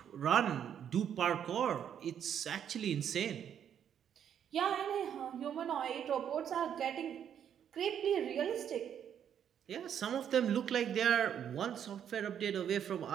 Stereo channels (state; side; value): quieter; left; 9.0 dB